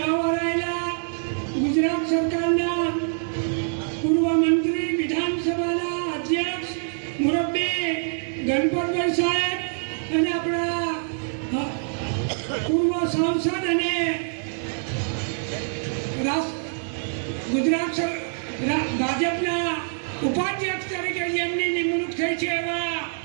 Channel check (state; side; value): silent; left; digital silence